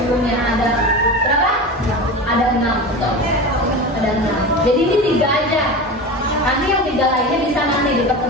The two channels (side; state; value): both; normal; correlation 0.28